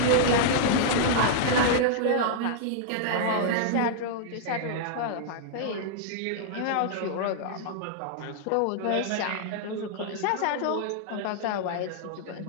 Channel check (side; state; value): both; different; correlation -0.01